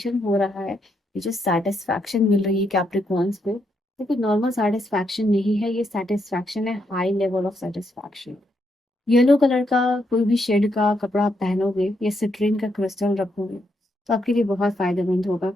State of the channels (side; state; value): both; normal; correlation 0.78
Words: हो रहा है, ये जो सेटिस्फैक्शन मिल रही है कैप्रिकॉर्न्स को, ये कोई नॉर्मल सेटिस्फैक्शन नहीं है, ये सेटिस्फैक्शन है high level of satisfaction. Yellow colour का कोई भी शेड का कपड़ा आप पहनोगे या सिट्रीन का क्रिस्टल रखोगे तो आपके लिए बहुत फायदेमंद होगा,